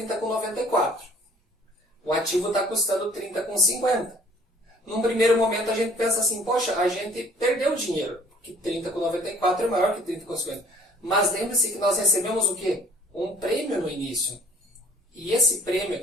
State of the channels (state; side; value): normal; both; correlation 0.54